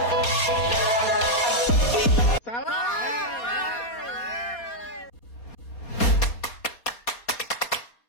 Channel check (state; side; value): late; right; 4.2 ms